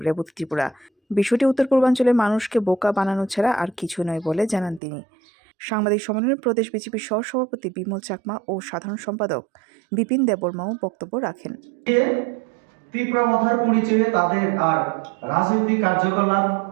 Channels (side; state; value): left; drops out; at 4.8 s